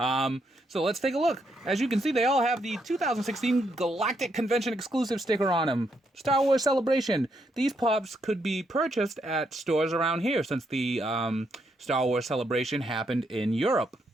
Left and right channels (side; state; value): both; normal; correlation 0.77